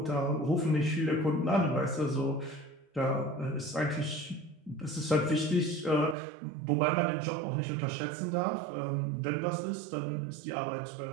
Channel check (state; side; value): drops out; left; at 6.2 s